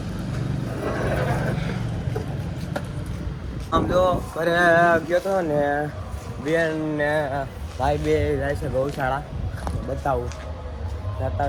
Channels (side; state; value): both; identical; correlation 1.00